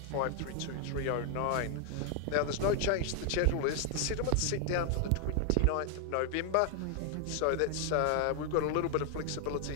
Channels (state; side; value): different; both; correlation 0.00